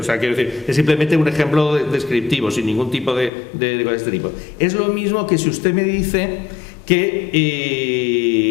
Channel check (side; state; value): right; drops out; at 3.3 s